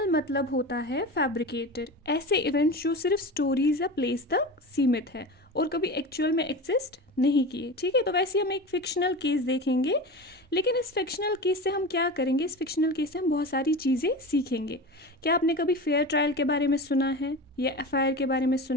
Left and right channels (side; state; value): both; normal; correlation 0.29